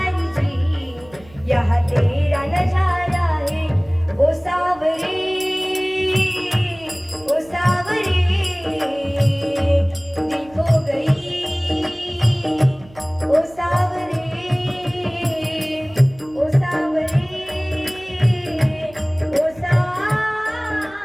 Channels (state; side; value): noise; right; hum, 23 dB below the sound